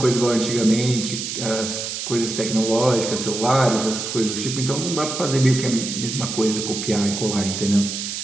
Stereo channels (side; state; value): right; noise; hiss, 5 dB below the sound